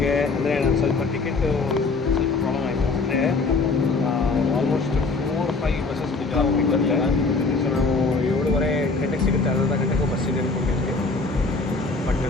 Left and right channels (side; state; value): right; quieter; 3.9 dB